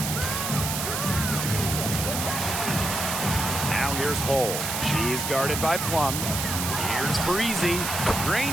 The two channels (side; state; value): right; noise; hiss, 2 dB below the sound